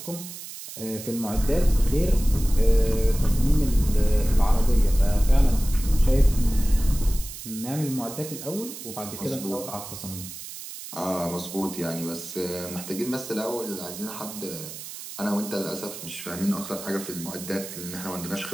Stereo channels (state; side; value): noise; right; hiss, 11 dB below the sound